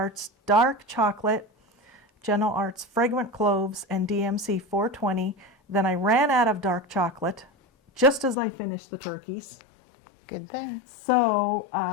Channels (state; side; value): drops out; right; at 8.3 s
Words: Dark Chocolate, Gentle Arts Fragrant Cloves, and DMC 420. Then I ran out of dark chocolate just as I finished the turkeys. Good thing. So